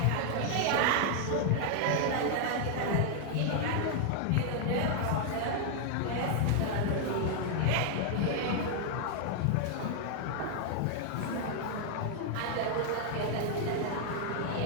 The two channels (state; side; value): different; both; correlation 0.00